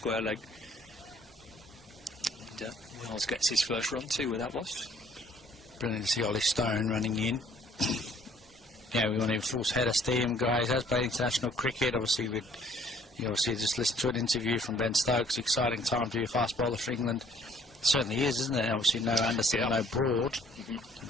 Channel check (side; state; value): both; normal; correlation 0.59